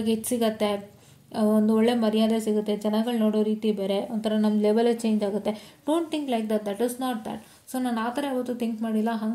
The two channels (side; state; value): both; identical; correlation 1.00